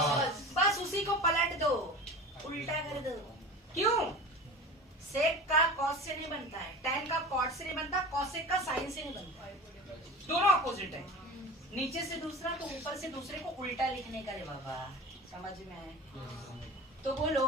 बस उसी को पलट दो, उल्टा कर दो। क्यों? सेक का कॉस से नहीं बनता है, tan का कॉट से नहीं बनता, कॉसेक का साइन से नहीं बनता है, दोनों अपोजिट है। नीचे से दूसरा तो ऊपर से दूसरे को उल्टा लिखने का रे बाबा, समझ में आए? तो बोलो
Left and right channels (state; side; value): normal; both; correlation 0.33